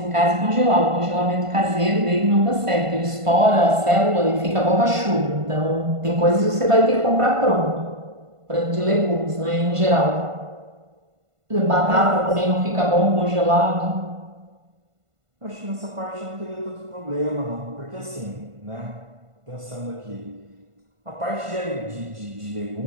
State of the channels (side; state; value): left; late; 1.5 ms